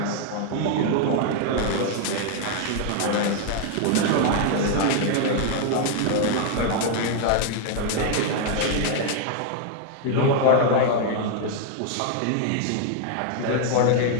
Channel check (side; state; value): both; different; correlation 0.00